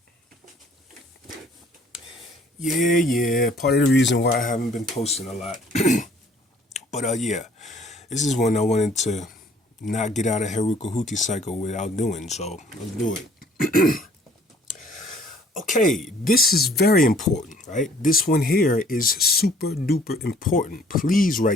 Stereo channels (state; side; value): normal; both; correlation 0.58